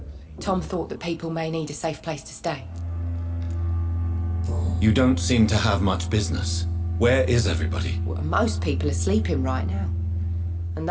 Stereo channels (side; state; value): both; identical; correlation 1.00